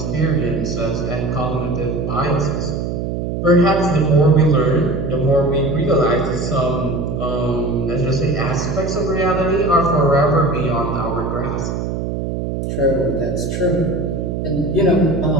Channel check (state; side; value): noise; right; hum, 3 dB below the sound